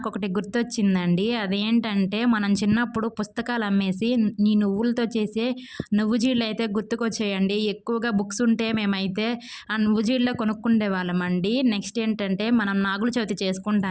గుర్తొచ్చిందండి. అదేంటంటే మనం చిన్నప్పుడు పుస్తకాలు అమ్మేసి ఈ నువ్వులతో చేసే నువ్వు జీడలైతే గుర్తుకొచ్చాయండి. ఎక్కువగా బుక్స్ ఉంటే మేమైతే ఆ నువ్వు జీడలే కొనుక్కుండేవాళ్ళమండి. నెక్స్ట్ ఏంటంటే మనం నాగుల చవితి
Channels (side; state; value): both; identical; correlation 1.00